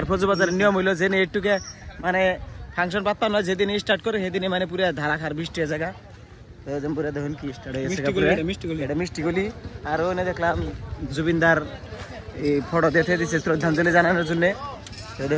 ফৌজবাজারের নিয়ম হইলো যে একটুকে মানে ফাংশন পাত্তা নয়, যেদিন স্টার্ট করে সেদিনে মানে পুরো ধারাখার বৃষ্টি হয়ে জায়গা। পুরো দেখুন কি স্টার্ট হয়ে গেছে, এটা মিষ্টিগুলি। আর ওখানে দেখলাম জুবিনদার এই ফটো দেখে দিচ্ছে শ্রদ্ধাঞ্জলি জানানোর জন্য। তো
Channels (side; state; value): both; identical; correlation 1.00